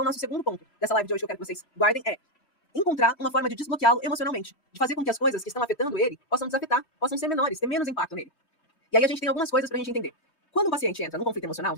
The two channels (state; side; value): late; right; 3.0 ms